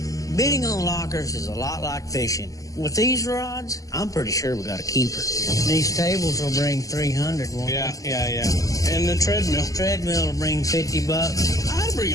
Bidding on lockers is a lot like fishing. With these rods, I'm pretty sure we got a keeper. These tables will bring $300. Won't Yeah. they? And the treadmill. Treadmill will bring $50. I'd bring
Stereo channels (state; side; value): late; right; 0.17 ms